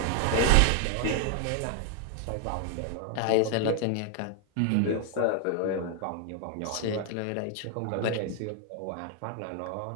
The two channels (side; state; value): both; different; correlation 0.00